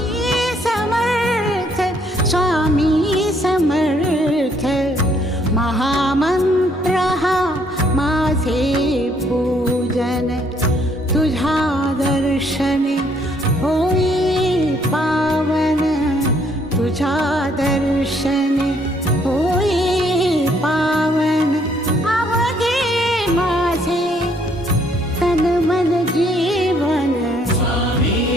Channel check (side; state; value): both; normal; correlation 0.67